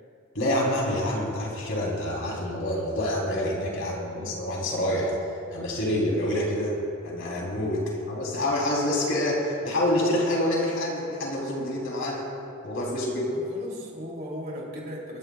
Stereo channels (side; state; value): both; normal; correlation 0.25